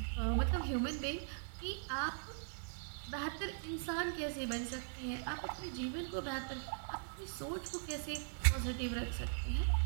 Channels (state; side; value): silent; left; 51 dB below the other